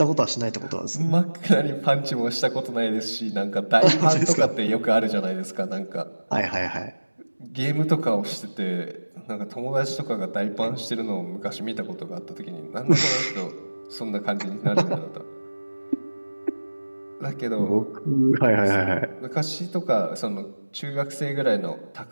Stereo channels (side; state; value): both; inverted; correlation -1.00